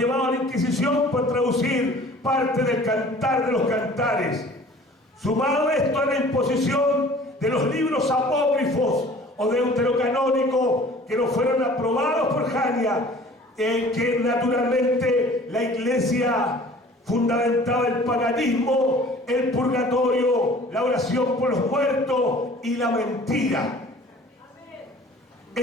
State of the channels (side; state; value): both; normal; correlation 0.48